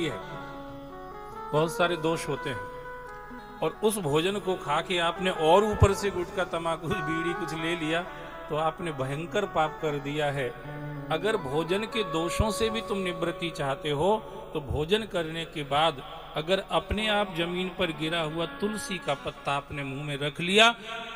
है। बहुत सारे दोष होते हैं और उस भोजन को खा के आपने और ऊपर से गुटखा, तमाकू, बीड़ी कुछ ले लिया तो आपने भयंकर पाप कर दिया है। अगर भोजन के दोषों से भी तुम निवृत्ति चाहते हो तो भोजन करने के बाद अगर अपने आप जमीन पर गिरा हुआ तुलसी का पत्ता अपने मुंह में रख लिया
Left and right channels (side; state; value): both; identical; correlation 1.00